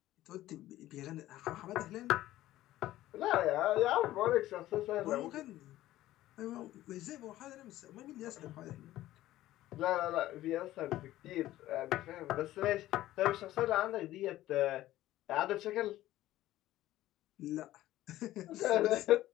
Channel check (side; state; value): right; quieter; 15.0 dB